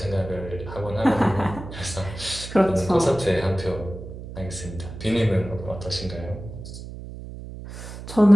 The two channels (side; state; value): right; noise; hum, 11 dB below the sound